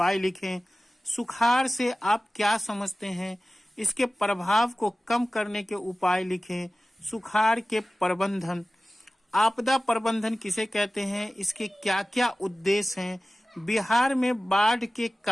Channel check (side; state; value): both; normal; correlation 0.96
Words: लिखें। सुखाड़ से आप क्या समझते हैं? इसके प्रभाव को कम करने के उपाय लिखें। सुखाड़ के प्रबंधन, आपदा प्रबंधन किसे कहते हैं? इसके क्या क्या उद्देश्य हैं? बिहार में बाढ़ के